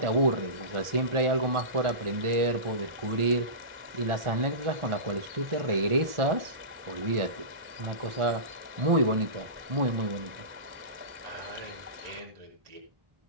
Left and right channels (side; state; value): left; late; 1.4 ms